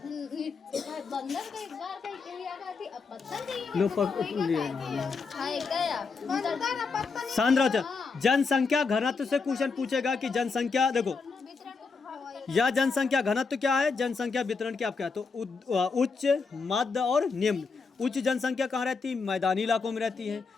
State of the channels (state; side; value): quieter; right; 4.7 dB